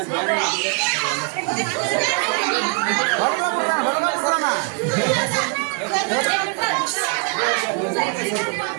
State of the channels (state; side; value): quieter; left; 37.6 dB